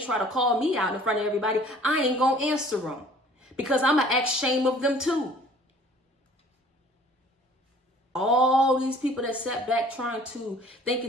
to call me out in front of everybody, I ain't going to answer them because I'm going to act shame of them too. All these people that sat back thinking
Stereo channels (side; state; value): both; normal; correlation 0.52